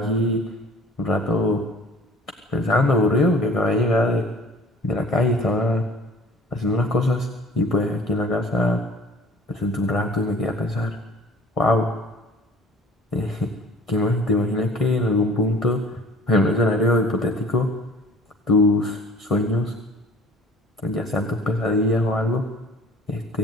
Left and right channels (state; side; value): normal; both; correlation 0.48